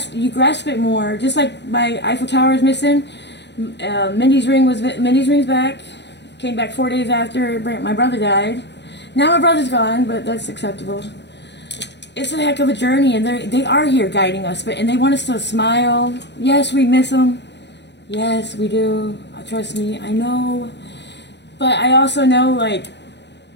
it more. Just like my Eiffel Tower is missing, Mindy's ring's back. Came back 4 days after my brother died. Now my brother's gone, but that's acceptable. It's a heck of a journey, and they are here guiding us, and they want us to smile. Yes, we miss them. Yes, we do. Trust me, I know. But I also know, like,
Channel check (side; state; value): right; late; 0.50 ms